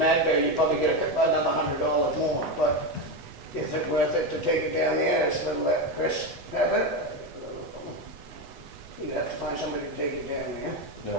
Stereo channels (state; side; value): late; left; 8.1 ms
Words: you'd probably get another $100 more, but is it worth it to take it down there, and let Chris have it? You'd have to find somebody to take it down there.